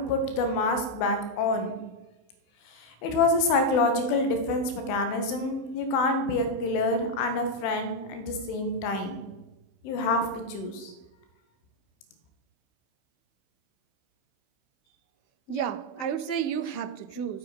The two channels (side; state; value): right; late; 16 ms